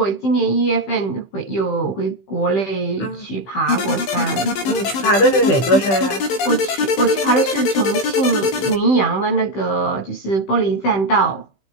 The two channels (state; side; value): late; right; 15 ms